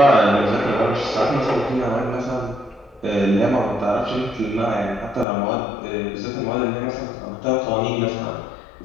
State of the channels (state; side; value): drops out; right; at 5.2 s